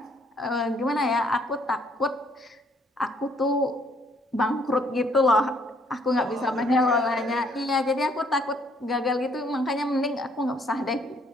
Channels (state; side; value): normal; both; correlation 0.66